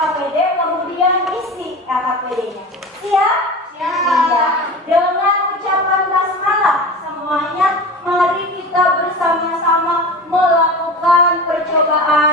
kemudian isi LKPD-nya. Siap? Siap. Dengan ucapan basmalah semuanya, mari kita bersama-sama melakukan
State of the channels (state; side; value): normal; both; correlation 0.31